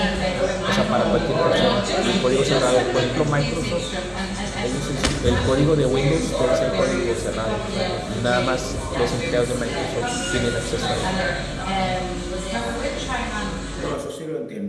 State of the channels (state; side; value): identical; both; correlation 1.00